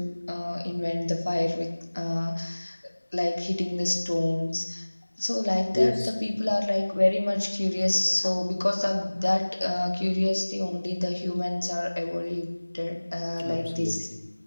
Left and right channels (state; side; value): inverted; both; correlation -1.00